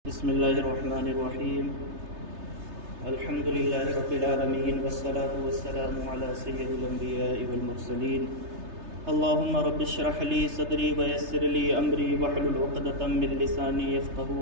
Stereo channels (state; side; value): late; left; 3.3 ms